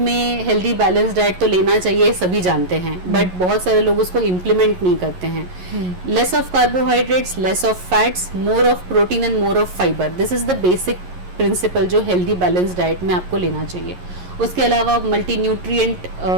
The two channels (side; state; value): left; late; 11 ms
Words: हेल्दी बैलेंस डाइट तो लेना चाहिए, सभी जानते हैं, बट बहुत सारे लोग उसको इम्प्लीमेंट नहीं करते हैं। Less of carbohydrates, less of fats, more of protein and more of fibre, this is the basic principle जो हेल्दी बैलेंस डाइट में आपको लेना चाहिए। उसके अलावा मल्टी न्यूट्रिएंट